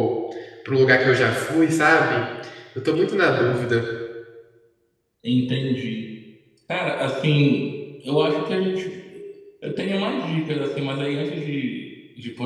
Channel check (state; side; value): identical; both; correlation 1.00